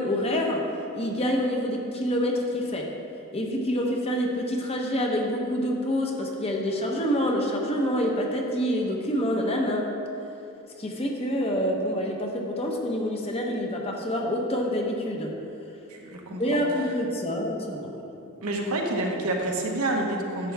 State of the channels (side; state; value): both; normal; correlation 0.40